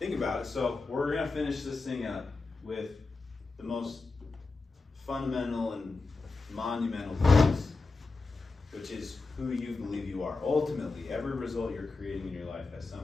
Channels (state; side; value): quieter; right; 3.8 dB